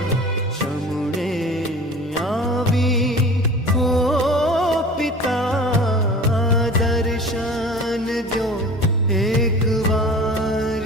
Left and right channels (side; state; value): both; normal; correlation 0.40